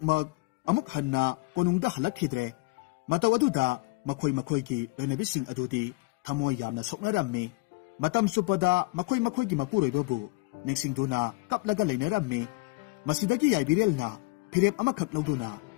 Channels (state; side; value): quieter; right; 24.4 dB